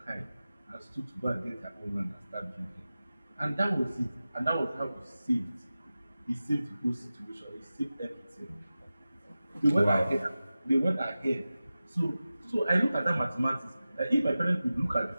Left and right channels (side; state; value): both; inverted; correlation -0.95